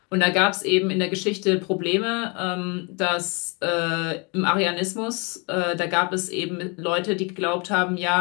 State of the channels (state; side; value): quieter; right; 31.5 dB